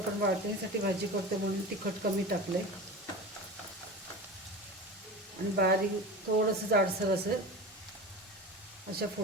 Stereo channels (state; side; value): normal; both; correlation 0.30